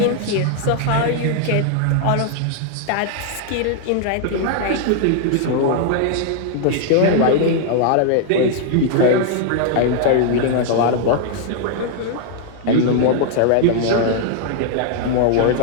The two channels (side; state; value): both; different; correlation 0.00